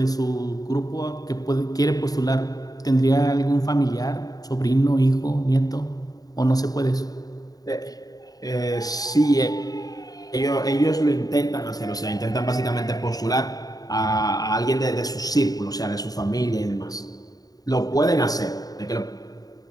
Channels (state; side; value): late; right; 0.18 ms